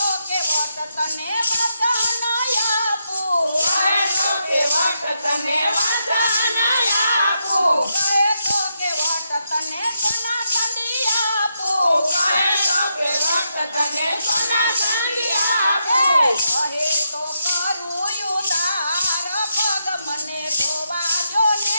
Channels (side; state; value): both; inverted; correlation -0.82